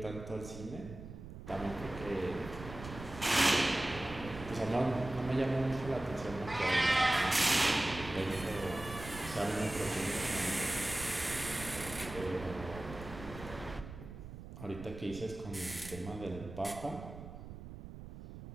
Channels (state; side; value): noise; right; rumble, 12 dB below the sound